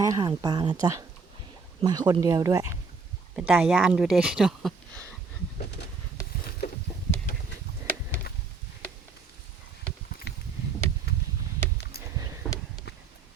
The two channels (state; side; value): quieter; left; 4.7 dB